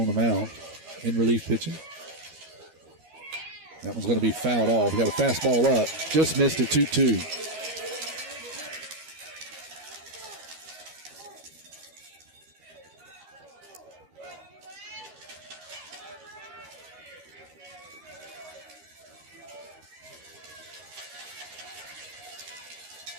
the mound in relief pitching. That one's going to be fouled off. He got a fastball up. Just missed it, 2-2.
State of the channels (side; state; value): left; late; 13 ms